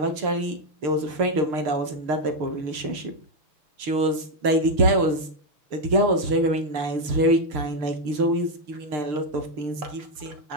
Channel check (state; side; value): late; left; 6.7 ms